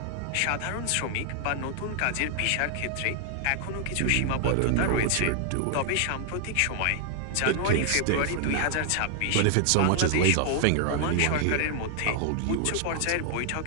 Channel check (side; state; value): both; different; correlation 0.00